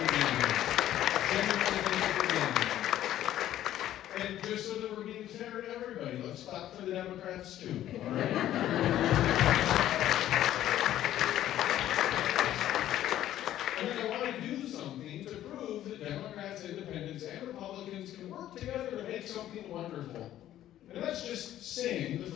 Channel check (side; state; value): right; quieter; 12.5 dB